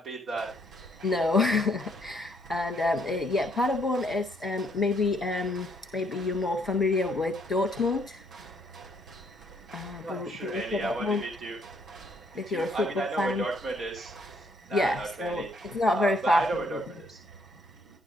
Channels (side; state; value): both; normal; correlation 0.69